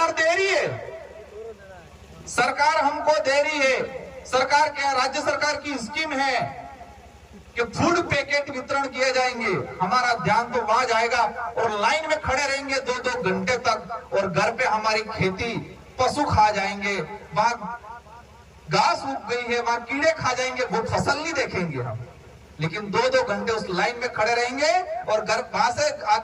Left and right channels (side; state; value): both; identical; correlation 1.00